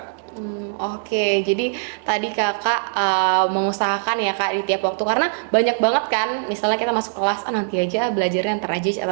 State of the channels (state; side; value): silent; left; digital silence